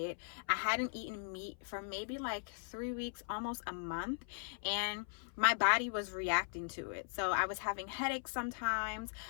I hadn't eaten meat for maybe like 3 weeks, almost a month, and my body was reacting to it. So I was having headaches sometimes.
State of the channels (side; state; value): right; silent; 52 dB below the other